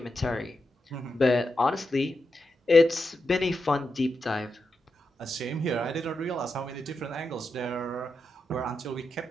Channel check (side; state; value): both; normal; correlation 0.87